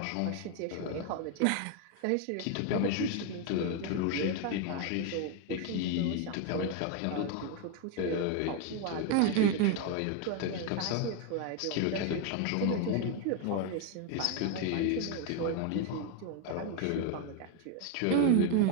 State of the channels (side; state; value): both; different; correlation 0.01